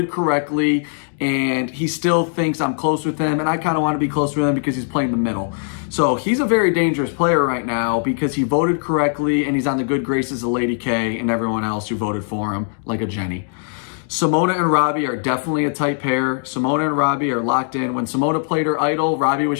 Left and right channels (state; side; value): silent; right; digital silence